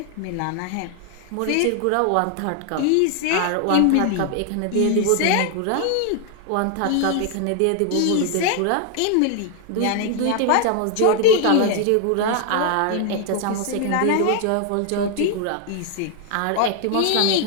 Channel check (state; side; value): different; both; correlation 0.00